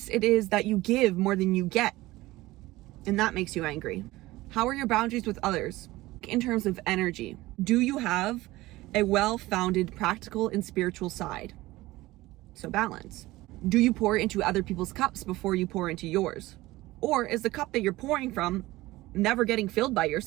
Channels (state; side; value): quieter; left; 18.6 dB